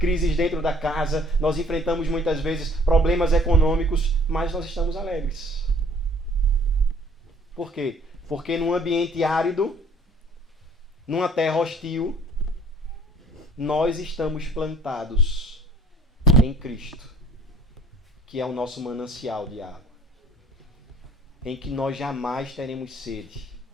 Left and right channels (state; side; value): normal; both; correlation 0.54